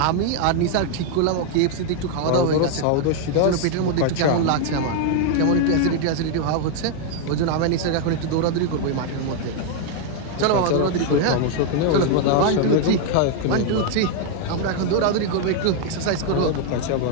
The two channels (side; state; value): both; different; correlation 0.00